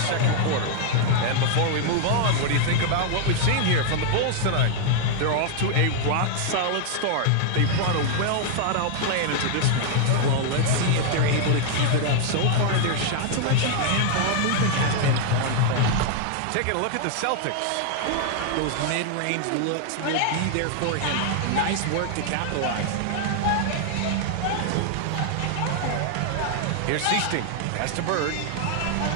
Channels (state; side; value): different; both; correlation 0.00